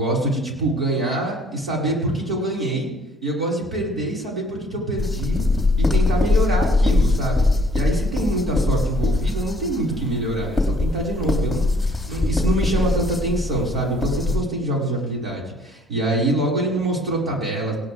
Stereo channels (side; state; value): both; normal; correlation 0.58